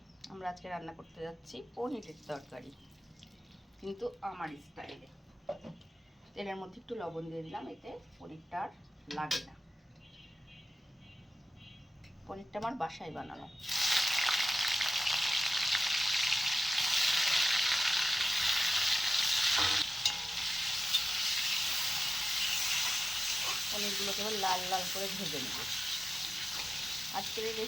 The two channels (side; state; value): both; normal; correlation 0.94